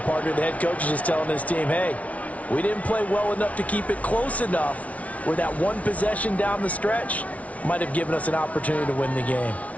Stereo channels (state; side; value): late; right; 0.067 ms